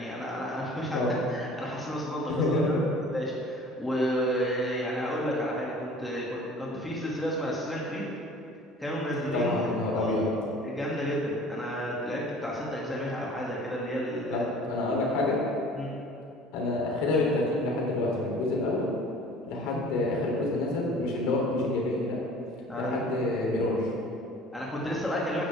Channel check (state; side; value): normal; both; correlation 0.47